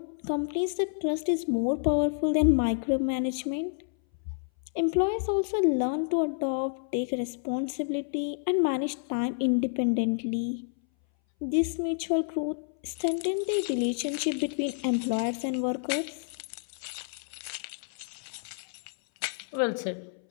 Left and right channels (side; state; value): right; silent; 58 dB below the other